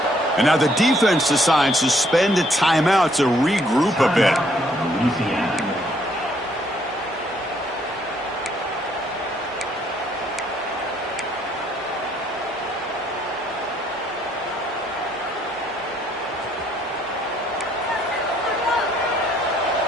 15. And now the defense decides to spend a timeout to regroup a bit.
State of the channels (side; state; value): both; normal; correlation 0.67